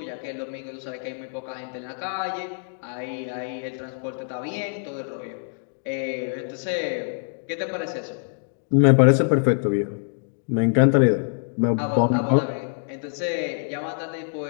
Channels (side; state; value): right; silent; digital silence